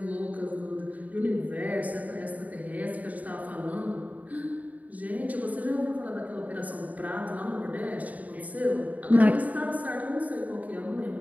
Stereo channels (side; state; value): left; late; 0.073 ms